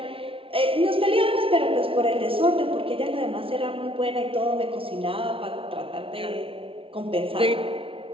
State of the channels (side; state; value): left; late; 0.26 ms